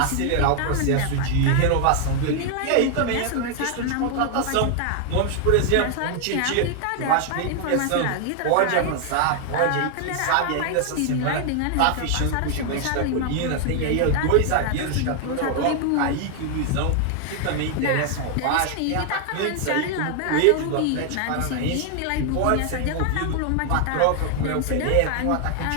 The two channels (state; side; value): different; both; correlation 0.00